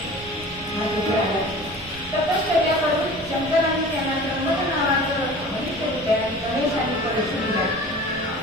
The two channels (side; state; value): right; noise; rumble, 19 dB below the sound